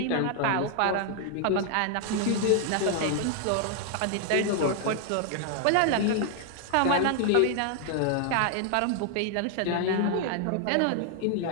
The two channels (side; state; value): both; different; correlation 0.00